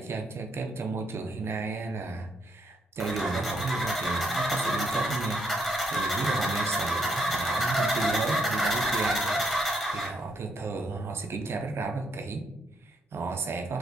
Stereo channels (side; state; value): both; normal; correlation 0.74